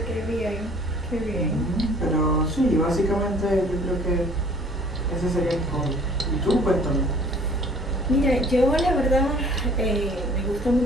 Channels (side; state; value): both; normal; correlation 0.53